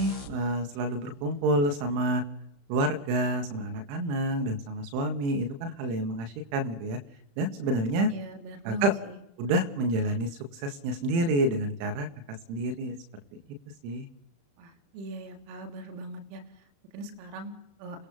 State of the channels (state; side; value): late; left; 35 ms